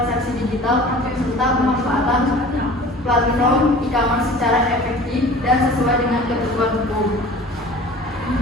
digital, serta pemanfaatan platform e-commerce secara efektif dan sesuai dengan ketentuan hukum.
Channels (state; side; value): normal; both; correlation 0.43